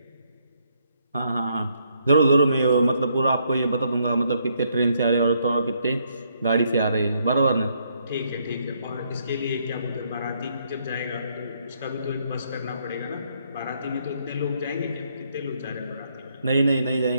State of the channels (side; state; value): both; inverted; correlation -0.73